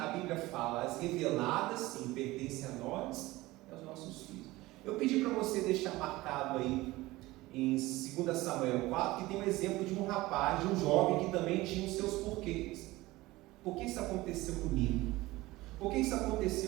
Bíblia fala, as reveladas sim pertencem a nós e aos nossos filhos. Eu pedi para você deixar marcado aí em 2 Samuel 4, que tem um exemplo de um rapaz, de um jovem que também tinha os seus porquês. Por que isso aconteceu comigo? Por que isso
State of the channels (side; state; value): left; quieter; 19.2 dB